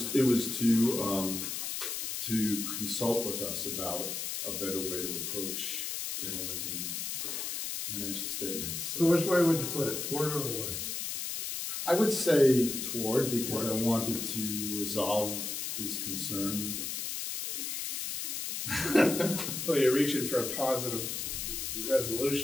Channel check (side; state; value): left; noise; hiss, 3 dB below the sound